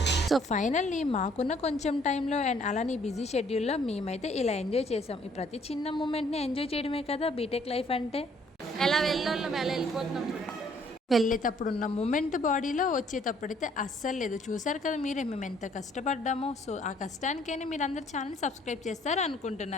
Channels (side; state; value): both; normal; correlation 0.63